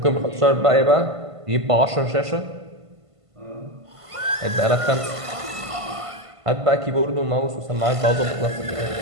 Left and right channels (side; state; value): left; late; 1.5 ms